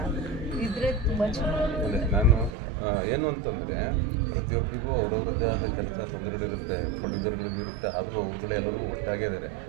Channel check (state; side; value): drops out; left; at 2.5 s